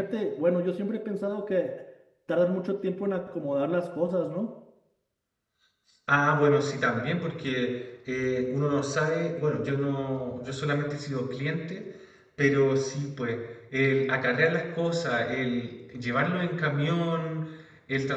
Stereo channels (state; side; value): identical; both; correlation 1.00